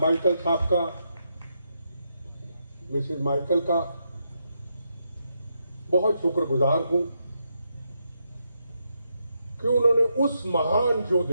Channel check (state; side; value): inverted; both; correlation -0.81